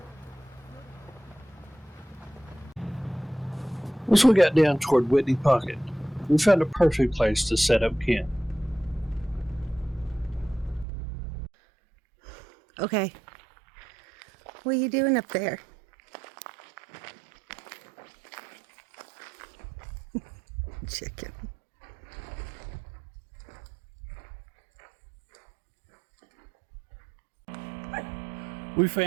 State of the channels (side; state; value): left; drops out; at 10.9 s